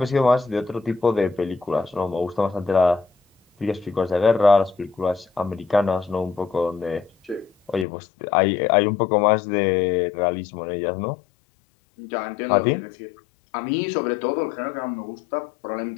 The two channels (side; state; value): right; drops out; at 7.9 s